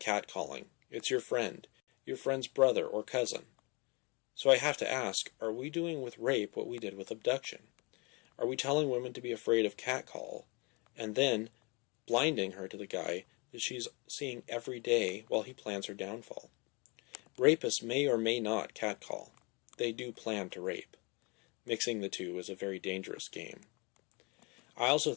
it's your friend's brother or cousin. So I have to ask, are we doing with rape what we did with abduction? Are we telling women to be afraid of catcall, and then blinding her to the guy that she's seeing every day while he plans her downfall? Rapists may or may not catcall. They do plan to rape. Mixing the two is a very dangerous game. I also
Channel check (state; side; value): quieter; right; 29.2 dB